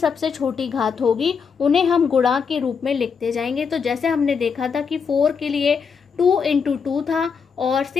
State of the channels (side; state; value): right; quieter; 6.0 dB